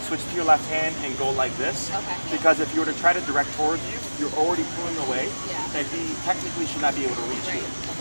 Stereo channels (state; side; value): inverted; both; correlation -1.00